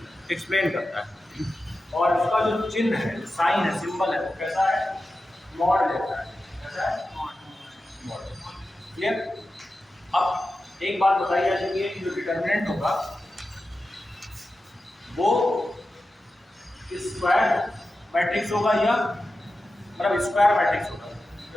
एक्सप्लेन करता है। और उसका जो चिन्ह है, साइन है, सिंबल है, वो कैसा है? मॉड जैसा है। कैसा है? मॉड। क्लियर? अब एक बात बताइए चाहिए कि जो डिटर्मिनेंट होगा वो स्क्वायर मैट्रिक्स होगा या मतलब स्क्वायर मैट्रिक्स होगा,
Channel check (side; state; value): both; normal; correlation 0.92